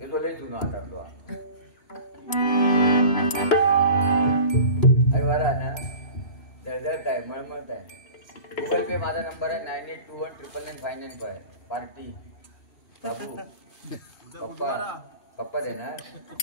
तो लई जुनो हातातलो अरे वारा ना जळजळत आहे मळमळत आहे गुगल पे माझा नंबर आहे 9821999595 पार्टी बाबू पप्पा दे ना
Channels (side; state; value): right; late; 3.1 ms